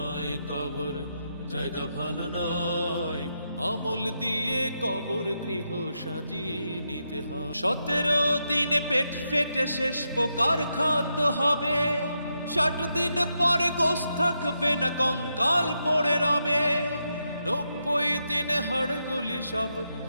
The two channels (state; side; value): inverted; both; correlation -0.83